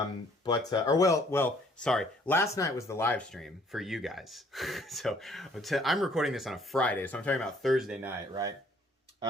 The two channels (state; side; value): normal; both; correlation 0.61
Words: Last night was the live stream for you guys. So I'm recording this on a Friday, so I'm talking about Thursday night, right?